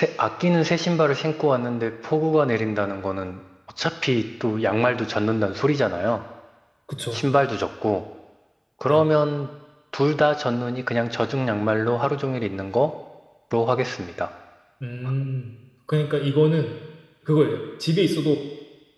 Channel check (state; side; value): identical; both; correlation 1.00